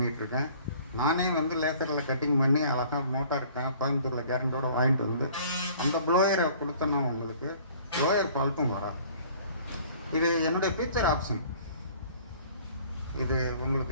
நானே வந்து லேசரில் கட்டிங் பண்ணி அழகாக மோட்டார் கோயம்புத்தூரில் கேரண்டோடு வாங்கிட்டு வந்து அந்த ப்ளோயரை கொடுத்தேன்னா உங்களுக்கு ப்ளோயர் ஃபால்ட்டும் வராது. இது என்னுடைய ஃபியூச்சர் ஆப்ஷன். இது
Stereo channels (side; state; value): both; inverted; correlation -0.52